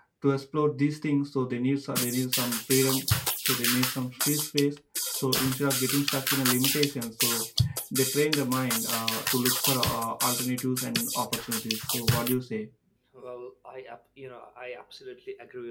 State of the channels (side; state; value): both; identical; correlation 1.00